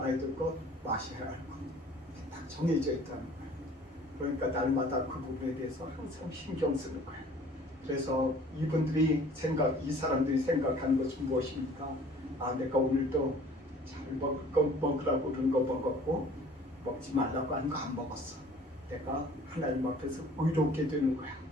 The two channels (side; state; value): both; normal; correlation 0.51